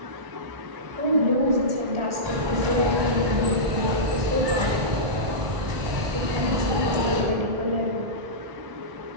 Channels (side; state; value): left; late; 1.2 ms